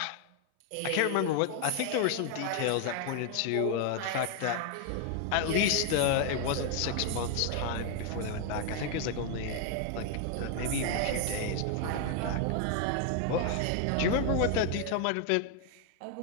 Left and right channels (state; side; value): different; both; correlation 0.00